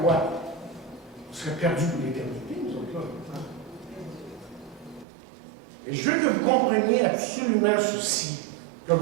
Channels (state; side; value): drops out; left; at 5.1 s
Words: On serait perdu pour l'éternité, nous autres là. Et je veux que vous compreniez absolument ceci. Que